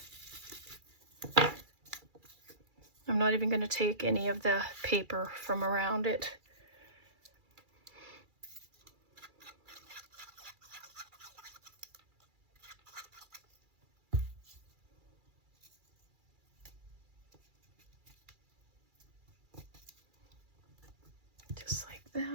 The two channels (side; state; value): left; late; 2.3 ms